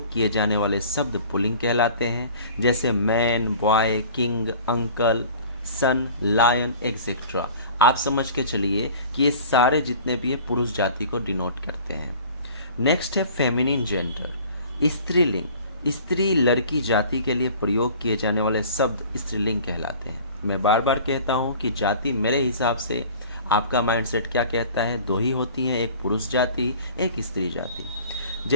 किए जाने वाले शब्द पुल्लिंग कहलाते हैं, जैसे मैन, बॉय, किंग, अंकल, सन, लायन एक्सेट्रा। आप समझ के चलिए कि ये सारे जितने भी है पुरुष जाति को डिनोट करते हैं। नेक्स्ट है फेमिनिन जेंडर, स्त्रीलिंग, स्त्री लड़की जाति के लिए प्रयोग किए जाने वाले शब्द स्त्रीलिंग कहलाते हैं। मैं बार बार कहता हूँ कि जाति मेरे हिसाब से आपका माइंडसेट क्या कहता है, दो ही होती हैं, एक पुरुष जाति, एक स्त्री जाति।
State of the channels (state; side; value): inverted; both; correlation -0.45